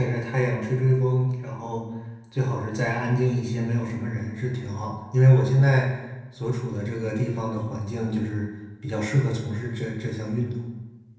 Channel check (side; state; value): both; identical; correlation 1.00